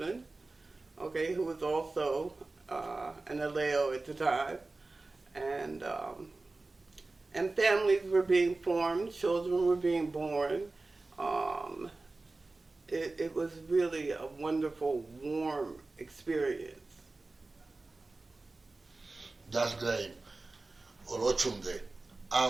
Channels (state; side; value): quieter; left; 3.3 dB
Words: okay, who was also an Aleo at the time. And families were being formed, children were being born. It was really a wonderful, warm experience. That's great. Oloshunde.